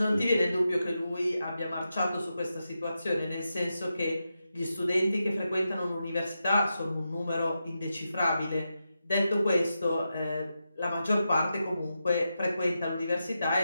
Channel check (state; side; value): inverted; both; correlation -0.88